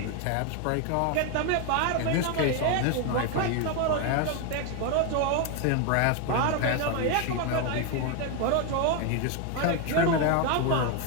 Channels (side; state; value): both; different; correlation 0.01